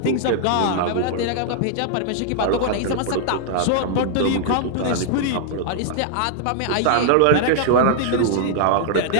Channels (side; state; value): both; different; correlation -0.01